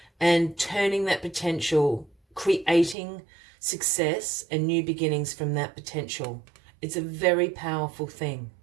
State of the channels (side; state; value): left; drops out; at 3.0 s